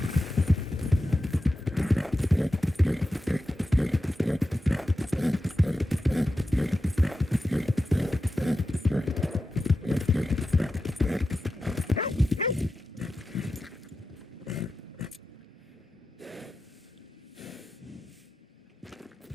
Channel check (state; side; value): normal; both; correlation 0.91